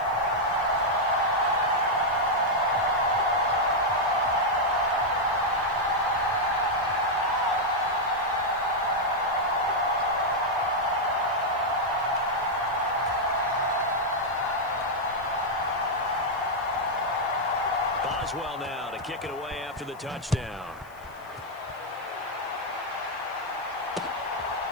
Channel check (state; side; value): noise; left; hiss, 28 dB below the sound